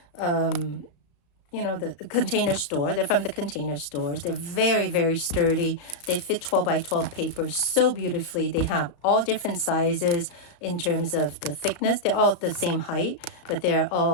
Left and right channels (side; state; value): right; late; 34 ms